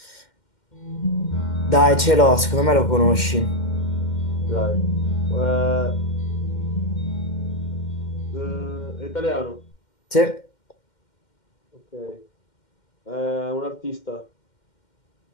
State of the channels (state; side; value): late; right; 2.1 ms